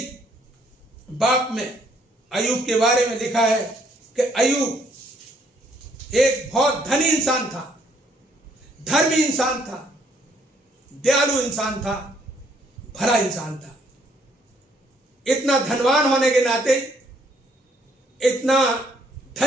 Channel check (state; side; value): normal; both; correlation 0.67